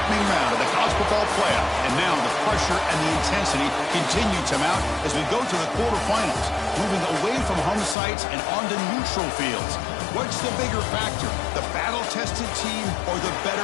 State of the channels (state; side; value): drops out; right; at 8.0 s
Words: round of the college football playoff, and now the pressure and the intensity continue to mount as we go to the quarterfinals, moving away from home sites and onto neutral fields. What's the bigger factor, the battle-tested team or the